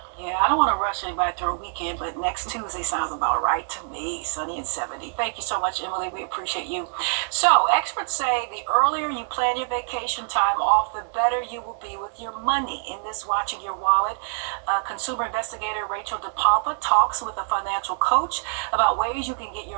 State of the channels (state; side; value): silent; left; 62 dB below the other